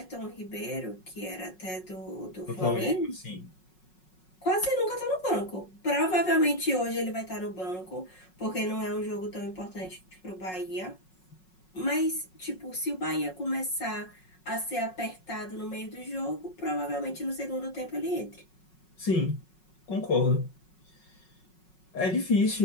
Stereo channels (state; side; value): late; right; 5.4 ms